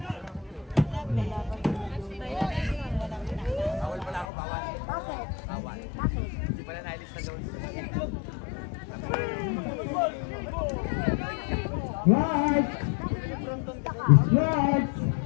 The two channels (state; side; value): drops out; right; at 4.2 s